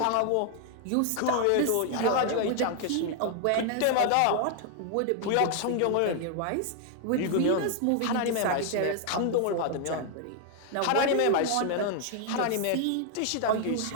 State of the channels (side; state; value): both; different; correlation 0.00